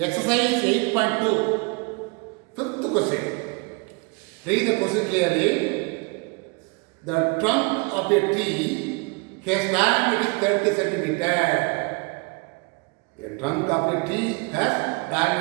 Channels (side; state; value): left; quieter; 30.9 dB